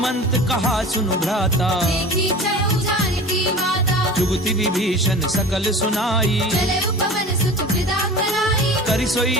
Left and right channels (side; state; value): both; normal; correlation 0.37